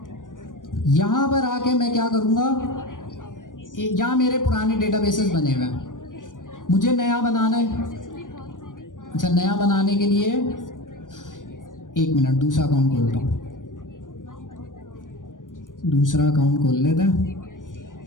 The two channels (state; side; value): late; right; 0.88 ms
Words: यहाँ पर आके मैं क्या करूँगा, यहाँ मेरे पुराने डेटाबेसेस बने हुए हैं, मुझे नया बनाना है। अच्छा, नया बनाने के लिए एक मिनट, दूसरा अकाउंट खोलता हूँ, दूसरा अकाउंट खोल लेते हैं।